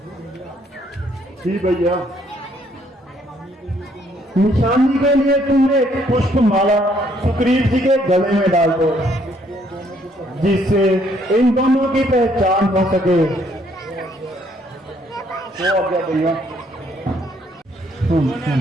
जी भैया, निशानी के लिए तुमने एक पुष्प माला सुग्रीव जी के गले में डाल दो, जिससे इन दोनों की पहचान हो सके। वो आ गया भैया।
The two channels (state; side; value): normal; both; correlation 0.67